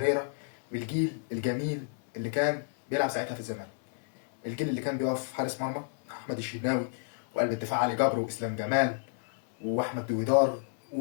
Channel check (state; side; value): silent; right; 57 dB below the other